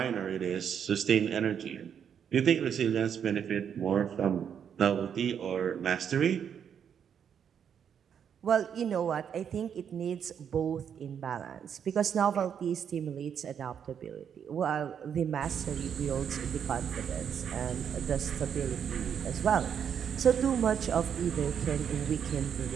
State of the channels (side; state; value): left; quieter; 8.0 dB